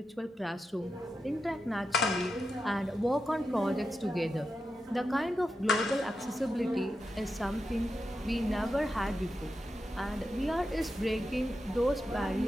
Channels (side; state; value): both; normal; correlation 0.88